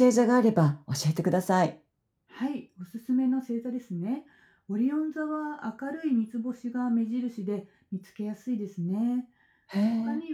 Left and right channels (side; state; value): both; identical; correlation 1.00